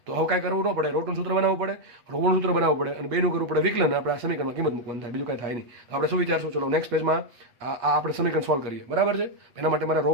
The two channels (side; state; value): left; late; 8.4 ms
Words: તો હવે કાંઈ કરવું ન પડે, રોટનું સૂત્ર બનાવવું પડે, રોનું સૂત્ર બનાવવું પડે અને બેનું કરવું પડે વિકલન. આપણે આ સમીકરણમાં કિંમત મૂકવાનું થાય, બીજું કાંઈ થાય નહીં. તો આપણે શું વિચારશું? ચલો નેક્સ્ટ પેજમાં આ આપણે સમીકરણ સોલ્વ કરીએ. બરાબર છે? એના માટે મારે રો